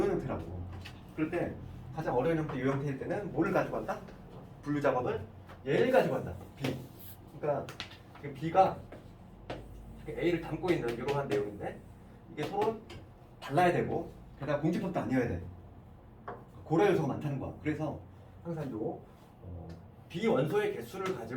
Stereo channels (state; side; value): identical; both; correlation 1.00